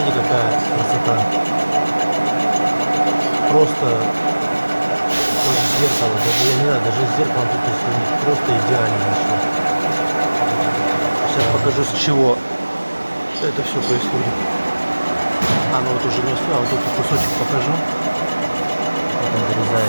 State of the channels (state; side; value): inverted; both; correlation -1.00